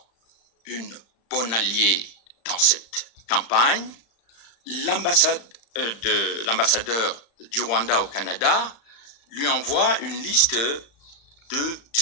une bonne alliée dans cette campagne. L'ambassadeur du Rwanda au Canada lui envoie une liste de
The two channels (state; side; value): late; right; 35 ms